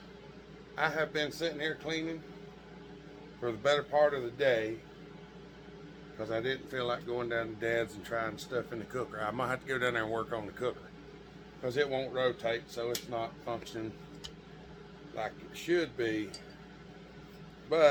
I have been sitting here cleaning for the better part of the day because I didn't feel like going down to Dad's and trying stuff in the cooker. I might have to go down there and work on the cooker because it won't rotate, so it's not functioning like it should be.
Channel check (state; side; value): identical; both; correlation 1.00